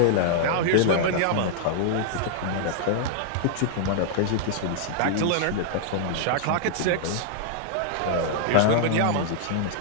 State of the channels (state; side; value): different; both; correlation -0.01